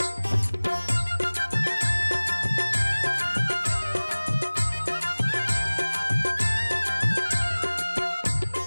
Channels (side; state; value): both; inverted; correlation -1.00